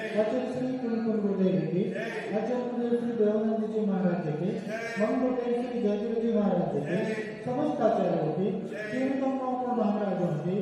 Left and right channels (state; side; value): identical; both; correlation 1.00